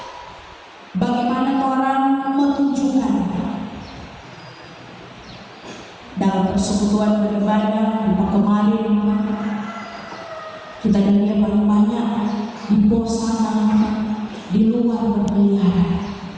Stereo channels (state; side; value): identical; both; correlation 1.00